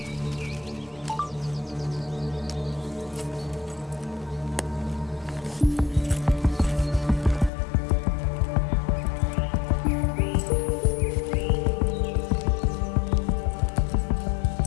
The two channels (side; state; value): right; drops out; at 7.5 s